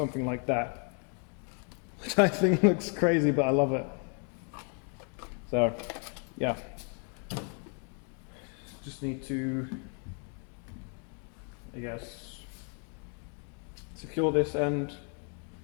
like that, which I think looks crazy, but I love it. So yeah, just need to, I guess, secure this end,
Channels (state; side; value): quieter; right; 37.0 dB